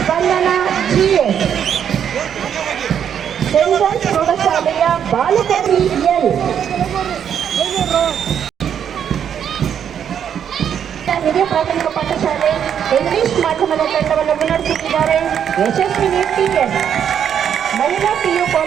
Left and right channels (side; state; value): left; quieter; 8.6 dB